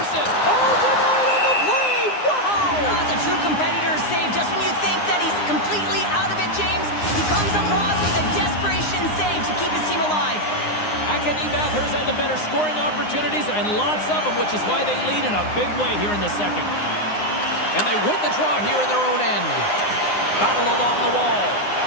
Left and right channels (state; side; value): late; right; 9.7 ms